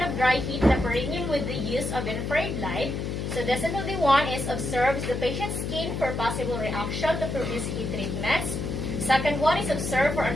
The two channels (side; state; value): left; noise; hum, 3 dB below the sound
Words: of dry heat the perineum with the use of infrared light. So definitely one is observes the patient's skin for possible reaction to produce heat treatments. Second one is observe for